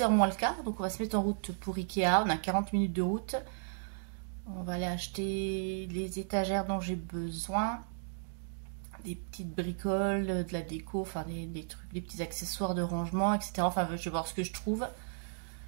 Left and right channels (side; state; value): left; silent; digital silence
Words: h moins le quart, donc on va se mettre en route pour Ikea. On a 40 minutes de route. On va aller acheter les étagères dont j'ai besoin. Des petites bricoles, de la déco, enfin des trucs, des petits accessoires de rangement, etc. Enfin, je vais voir ce que je trouve.